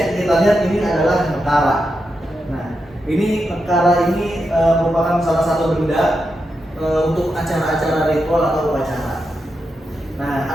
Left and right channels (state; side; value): normal; both; correlation 0.86